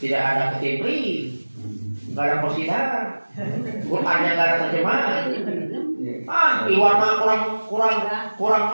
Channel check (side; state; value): both; inverted; correlation -1.00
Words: tidak ada ketimpling. Gak ada positif, Qurannya gak ada terjemahan. Iwan mah kurang